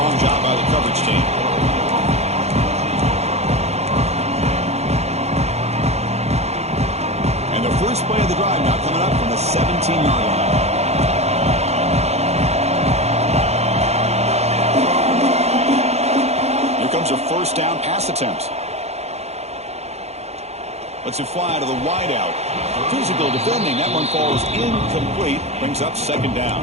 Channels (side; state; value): left; late; 0.31 ms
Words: job by the coverage team. And the first play of the drive now coming up from the 17-yard line. Comes a 1st down pass attempt. Lets it fly to the wideout. Physical defending. That one falls incomplete. Brings up 2nd down.